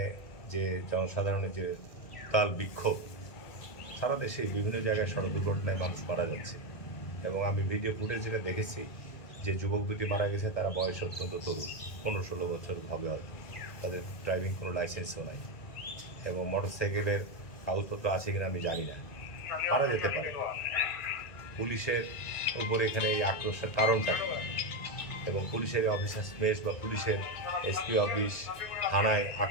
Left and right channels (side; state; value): right; late; 2.1 ms